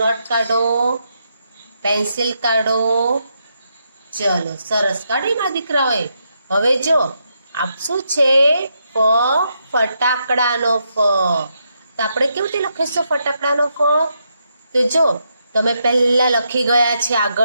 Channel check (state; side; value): inverted; both; correlation -0.81